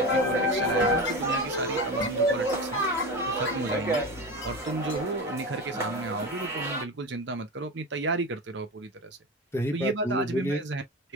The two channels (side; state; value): both; normal; correlation 0.25